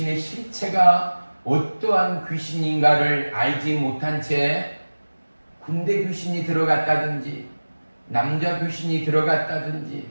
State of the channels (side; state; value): both; inverted; correlation -1.00